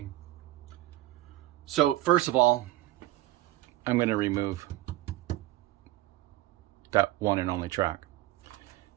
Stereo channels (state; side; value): quieter; left; 16.2 dB